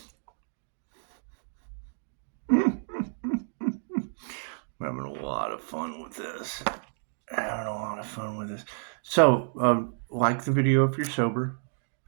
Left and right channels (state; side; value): silent; left; digital silence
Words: I'm having a lot of fun with this. So, like the video if you're sober.